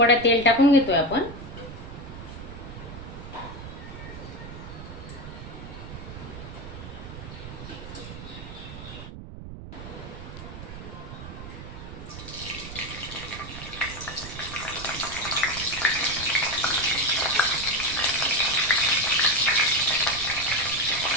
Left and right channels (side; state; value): right; noise; rumble, 11 dB below the sound